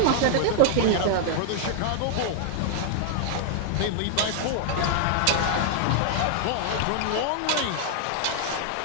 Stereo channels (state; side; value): different; both; correlation 0.00